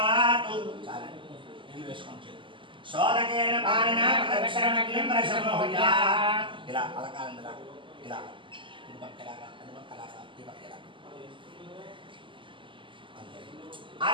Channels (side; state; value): left; late; 0.25 ms